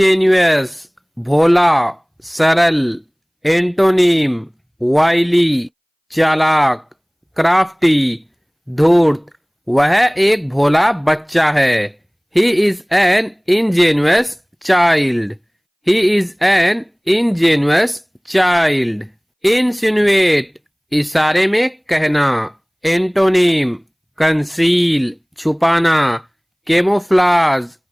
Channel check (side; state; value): both; identical; correlation 1.00